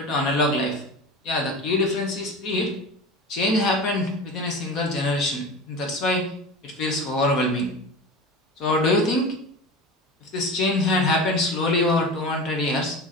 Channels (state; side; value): normal; both; correlation 0.30